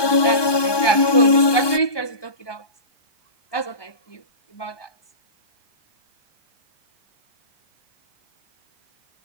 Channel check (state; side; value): late; right; 1.2 ms